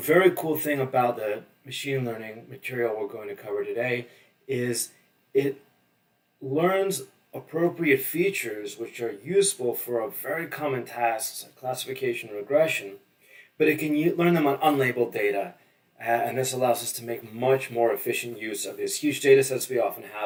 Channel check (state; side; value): normal; both; correlation 0.98